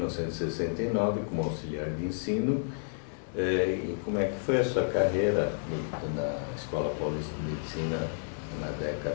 como auxiliar de ensino. E como é que foi a sua carreira na Escola Paulista de Medicina na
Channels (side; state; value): right; silent; 57 dB below the other